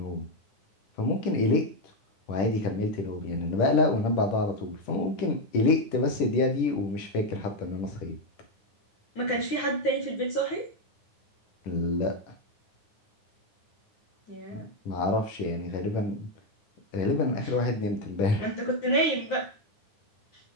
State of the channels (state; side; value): late; right; 9.6 ms